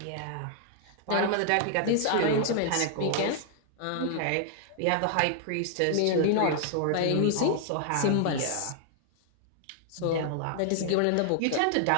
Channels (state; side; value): different; both; correlation -0.01